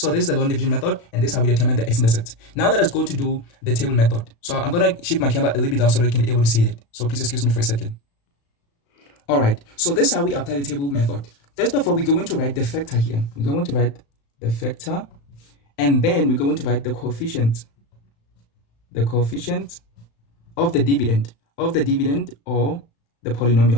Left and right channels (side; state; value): right; late; 35 ms